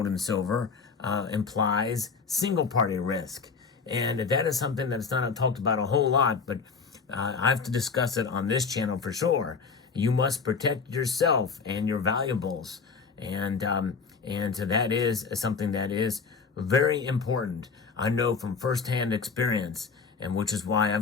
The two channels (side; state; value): right; quieter; 5.2 dB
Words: and silver implies single party risk. And that is something that's not talked about a whole lot, but I have to discuss it on this channel for sure. You must protect yourself and your valuables. And so that is something that is very important. I know from firsthand experience, and which is why